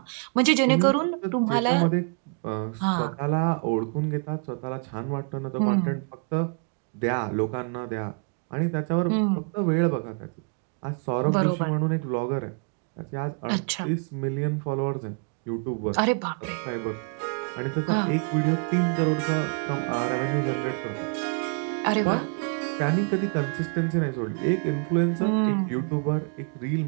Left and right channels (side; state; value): left; quieter; 39.3 dB